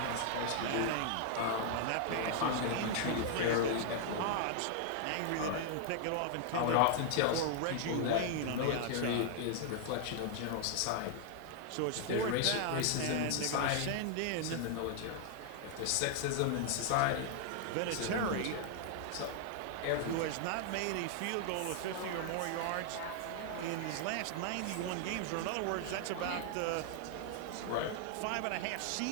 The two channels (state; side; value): different; both; correlation 0.00